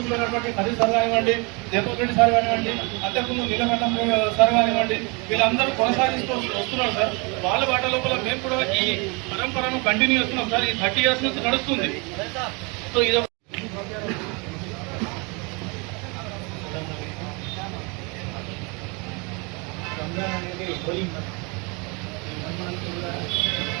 అయినటువంటి హరి సార్ కానివ్వండి, జయపూర్ రెడ్డి సార్ కానివ్వండి, అంతకుముందు నీలకంఠం సార్ కానివ్వండి, వీళ్ళందరూ కొనసాగిస్తూ వస్తున్నారు సార్. వాళ్ళ బాట లోపల మేము కూడా ఈ పరంపరను కంటిన్యూ చేస్తున్నాం సార్. ఈ 30 years నుంచి నడుస్తుంది. సో ఇది రంజాన్ అనేది హోలీ మంత్. ఈ మంత్ కూడా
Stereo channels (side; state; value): left; quieter; 30.5 dB